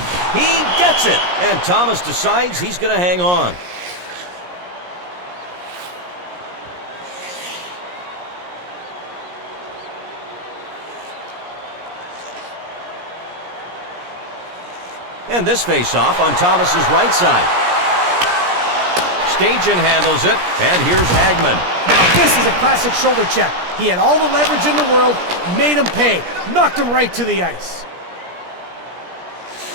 gets it. And Thomas decides he's going to hang on. And this face-off on Thomas's right side. Stajan handles it, and here's Hagman. Now this is a classic shoulder check. He had all the leverage in the world, made him pay, knocked him right to the ice.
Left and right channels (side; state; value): left; late; 17 ms